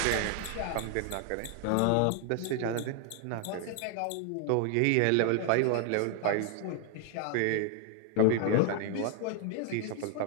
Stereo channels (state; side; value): different; both; correlation 0.00